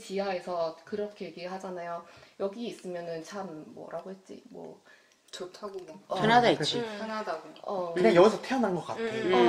그렇게 얘기하잖아요. 여기 있으면은 참 뭐라고 했지 뭐 좋다고 뭐 편하다 했지. 편하다고. 그냥 여기서 태어난 것 같아.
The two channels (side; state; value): both; identical; correlation 1.00